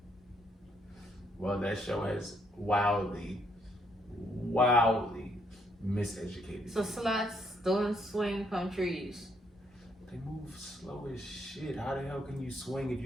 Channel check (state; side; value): normal; both; correlation 0.72